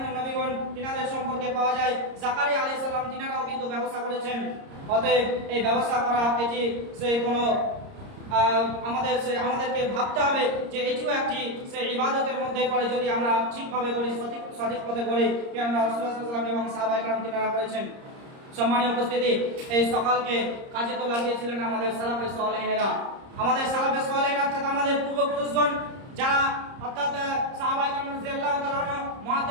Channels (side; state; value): left; late; 30 ms